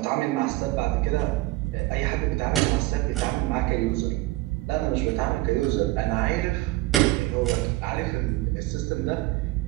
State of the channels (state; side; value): quieter; left; 19.1 dB